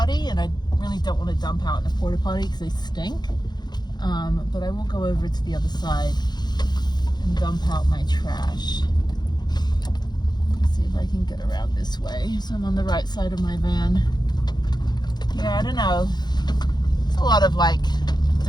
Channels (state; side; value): late; right; 0.21 ms